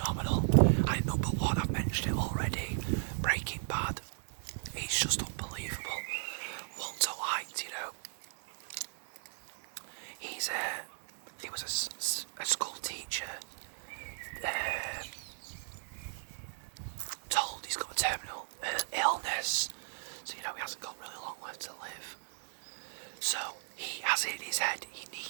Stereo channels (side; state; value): left; silent; 54 dB below the other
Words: And number 1, I've mentioned it already, Breaking Bad. It's just unbelievable. Walter White, he was a school teacher, told he's got a terminal illness, so he hasn't got really long left to live. So he has it in his head, he